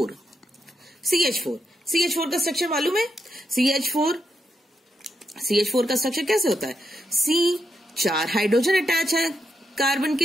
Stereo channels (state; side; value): normal; both; correlation 0.82